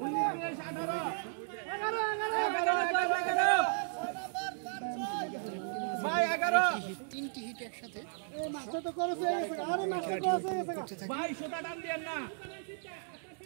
তিনটি হিট একসাথে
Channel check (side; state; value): left; silent; digital silence